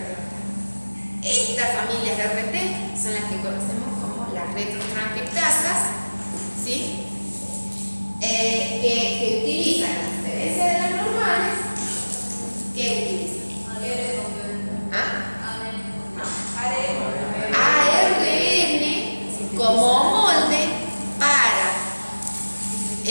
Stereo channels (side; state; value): both; inverted; correlation -1.00